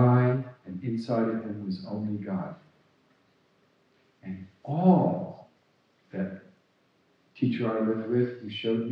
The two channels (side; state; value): both; identical; correlation 1.00